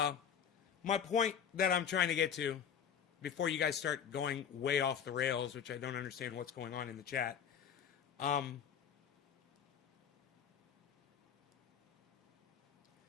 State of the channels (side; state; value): right; quieter; 8.1 dB